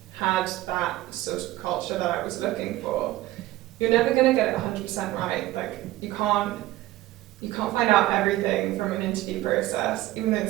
had that sort of culture that I was looking for. You're never going to get it 100% right. Like, you can't find out everything from an interview process. Even though the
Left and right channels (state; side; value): quieter; left; 16.4 dB